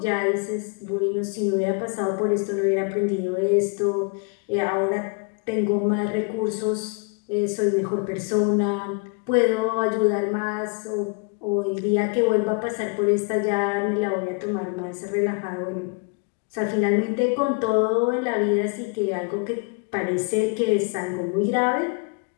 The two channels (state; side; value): quieter; right; 32.3 dB